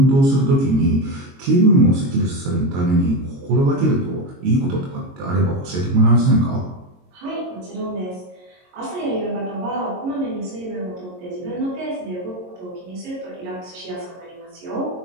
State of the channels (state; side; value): late; left; 22 ms